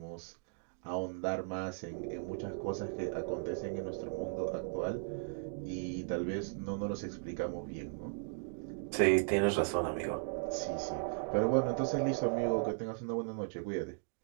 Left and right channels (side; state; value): left; silent; digital silence